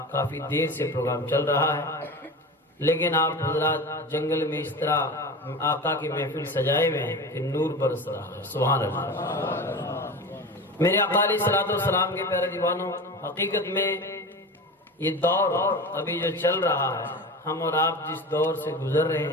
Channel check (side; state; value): both; normal; correlation 0.30